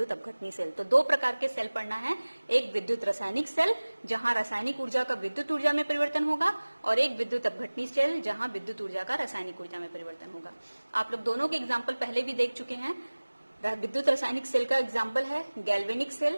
अपघटनी सेल। तो दो प्रकार के सेल पढ़ना है। एक विद्युत रासायनिक सेल जहां रासायनिक ऊर्जा का विद्युत ऊर्जा में परिवर्तन होगा, और एक विद्युत अपघटनी सेल जहां विद्युत ऊर्जा का रासायनिक ऊर्जा में परिवर्तन होगा। आप लोग दोनों के एग्जाम्पल पहले भी देख चुके हैं। विद्युत रासायनिक सेल का एग्जाम्पल है गैल्वेनिक सेल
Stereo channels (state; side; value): inverted; both; correlation -1.00